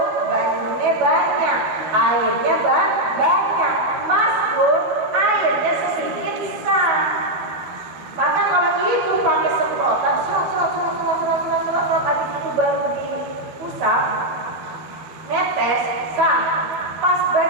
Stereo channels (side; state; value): left; late; 12 ms